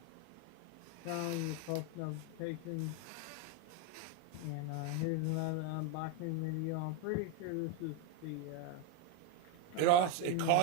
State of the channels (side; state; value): both; different; correlation 0.02